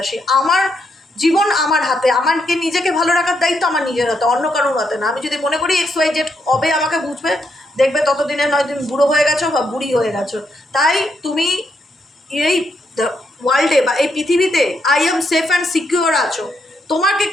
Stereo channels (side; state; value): both; normal; correlation 0.79